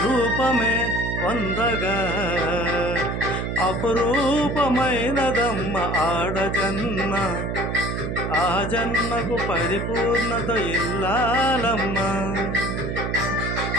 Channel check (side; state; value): right; noise; hum, 2 dB below the sound